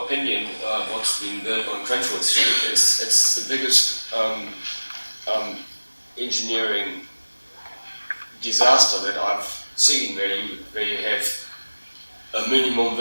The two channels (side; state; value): both; inverted; correlation -1.00